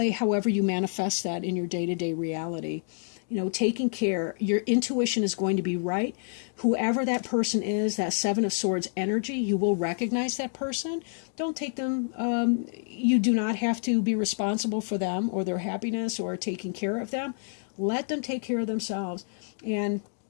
however you manifest that in your day-to-day reality. You know, taking care, your intuition is going to be right. Whoever that person is, that Seven of Swords energy, you will recognize that person. Don't take them, you do not have to be responsible for them or their happiness or taking care of them. Let them take care of themselves. And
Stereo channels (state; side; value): silent; right; digital silence